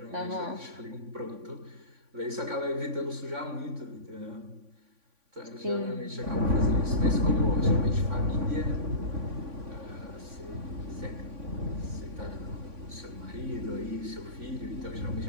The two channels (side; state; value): left; late; 3.5 ms